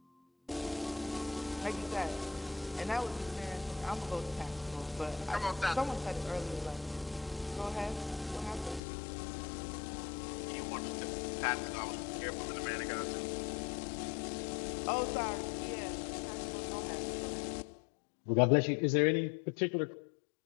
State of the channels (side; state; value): right; drops out; at 8.8 s